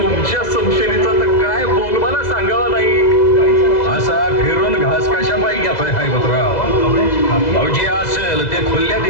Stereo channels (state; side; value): late; right; 2.0 ms